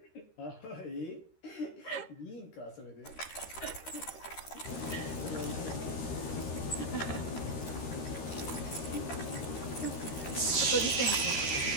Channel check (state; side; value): late; right; 13 ms